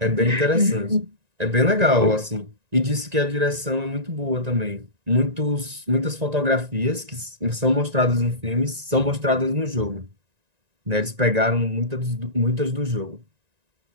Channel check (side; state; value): left; late; 1.9 ms